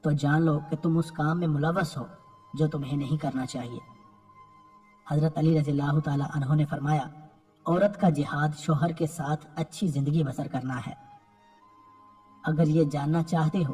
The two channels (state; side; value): identical; both; correlation 1.00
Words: تو جان لو کہ تم اس کام میں ملوث ہو جو تمہیں نہیں کرنا چاہیے۔ حضرت علی رضی اللہ تعالی عنہ نے فرمایا، عورت کا جہاد شوہر کے ساتھ اچھی زندگی بسر کرنا ہے۔ اگر یہ جاننا چاہتے